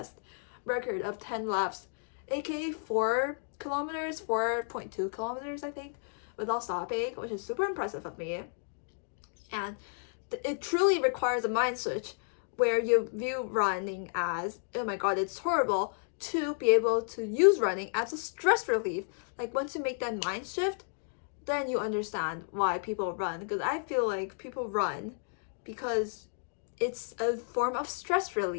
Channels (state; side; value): silent; right; digital silence